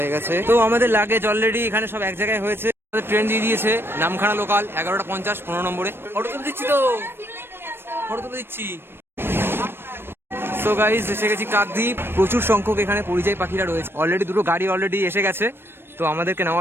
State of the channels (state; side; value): late; left; 0.11 ms